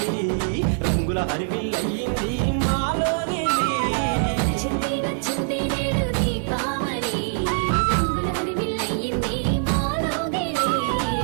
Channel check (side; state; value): left; silent; 63 dB below the other